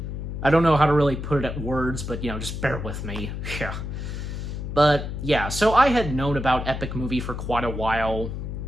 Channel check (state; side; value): noise; left; hum, 6 dB below the sound